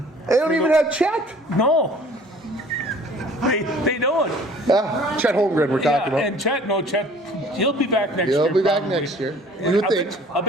They don't even have Chet. No, they don't. Chet Holmgren we're talking about. And Chet, he'll be back next year. He'll be back probably. next year. You would think. I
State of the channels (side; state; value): both; normal; correlation 0.51